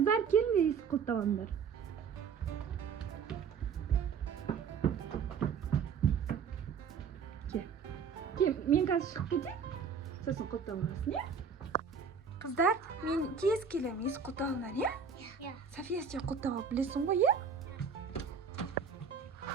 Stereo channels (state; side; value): quieter; left; 6.2 dB